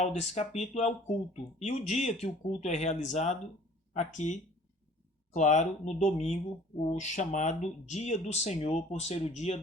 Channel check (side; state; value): both; normal; correlation 0.51